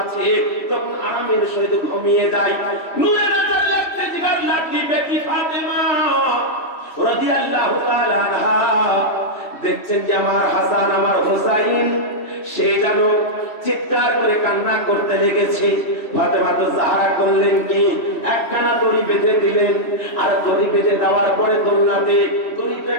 তখন আরামের সহিত ঘুমিয়ে যায়। নূরে নজর লাগতে জিগার লাঠি বেটি ফাতেমা রাদিয়াল্লাহু তাআলা আনহা দেখছেন যে আমার হাসান আমার হুসাইন সে যেন চিৎকার করে কান্না করতে লেগেছে। ফাতেমা তো জাহরা করলেন কি, একখানা দড়ি বেঁধে দিলেন, আর দড়ি বেঁধে দেওয়ার পরে দোলনাতে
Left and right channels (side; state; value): right; late; 3.1 ms